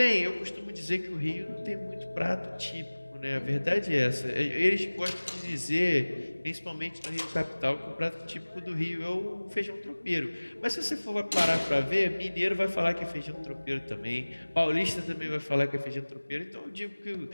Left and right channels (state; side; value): inverted; both; correlation -1.00